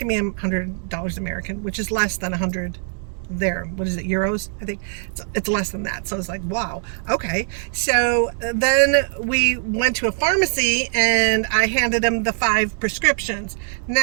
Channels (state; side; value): silent; left; 64 dB below the other